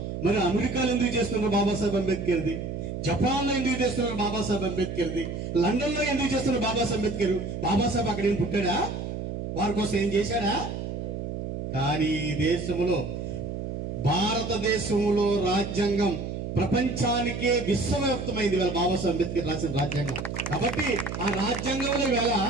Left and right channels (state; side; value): noise; right; hum, 5 dB below the sound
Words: మరి అమెరికాలో ఎందుకు చేస్తున్నారు బాబాసాహెబ్ అంబేద్కర్ది? జపాన్లో ఎందుకు చేస్తున్నారు బాబాసాహెబ్ అంబేద్కర్ది? లండన్లో ఎందుకు చేస్తున్నారు బాబాసాహెబ్ అంబేద్కర్? బాబాసాహెబ్ అక్కడ ఏం పుట్టాడా? వారి కోసం ఏం చేశాడా? కానీ ఈ దేశంలో, భారతదేశంలో రాజ్యాంగం ప్రపంచానికే విశ్వవ్యాప్తమైంది వేళ బాబాసాహెబ్ అంబేద్కర్ రాసిన రాజ్యాంగం. కాబట్టి ఆ రాజ్యాంగంలో వేళ